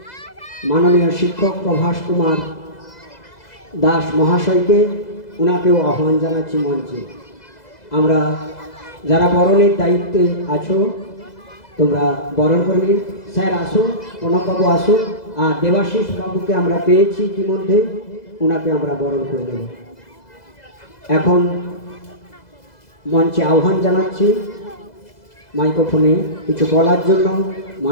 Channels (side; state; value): right; late; 2.0 ms